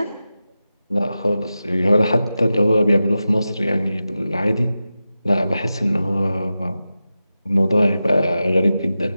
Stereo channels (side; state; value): both; inverted; correlation -0.93